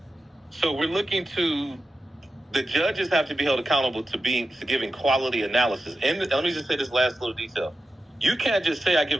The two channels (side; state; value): both; normal; correlation 0.91